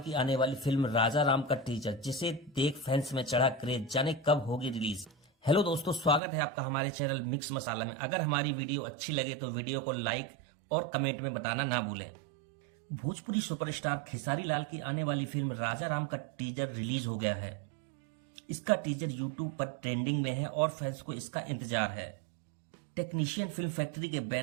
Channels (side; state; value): left; drops out; at 6.2 s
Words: आने वाली फिल्म राजा राम का टीजर, जिसे देख फैंस में चढ़ा क्रेज। जाने कब होगी रिलीज। हेलो दोस्तों, स्वागत है आपका हमारे चैनल मिक्स मसाला में। अगर हमारी वीडियो अच्छी लगे तो वीडियो को लाइक और कमेंट में बताना ना भूलें। भोजपुरी सुपरस्टार खेसारी लाल की आने वाली फिल्म राजा राम का टीजर रिलीज हो गया है। इसका टीजर यूट्यूब पर ट्रेंडिंग में है और फैंस को इसका इंतजार है। टेक्नीशियन फिल्म फैक्ट्री के